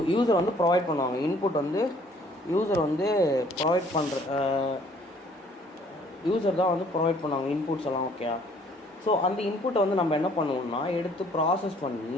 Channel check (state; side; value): normal; both; correlation 0.59